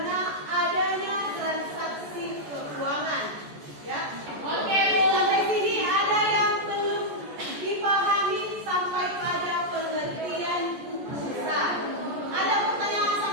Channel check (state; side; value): late; left; 14 ms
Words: adanya transaksi keuangan. Ya. Oke, sampai sini ada yang belum dipahami sampai pada pengertian buku besar. Ada pertanyaan